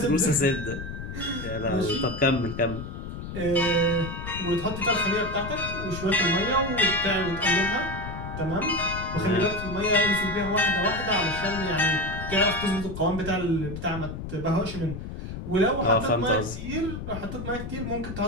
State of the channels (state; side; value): noise; left; rumble, 8 dB below the sound